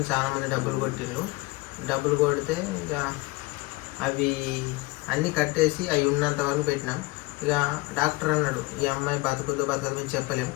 చాలా మంది డబ్బులు కొట్టిండ్రు. డబ్బులు కొడితే ఇక అవి అన్నీ కట్టేసి అవి ఉన్నంత వరకు పెట్టినాం. ఇక డాక్టర్ అన్నాడు, ఈ అమ్మాయి బతుకుతో మేము చెప్పలేము,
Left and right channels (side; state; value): right; quieter; 22.5 dB